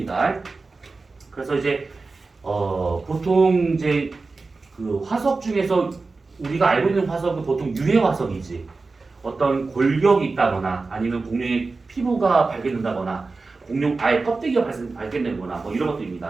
그래서 이제 보통 이제 그 화석 중에서 우리가 알고 있는 화석은 보통 유해 화석이지. 어떤 골격이 있다거나 아니면 공룡의 피부가 발견된다거나 공룡 알 껍데기가 발견되거나 이런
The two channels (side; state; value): left; quieter; 3.9 dB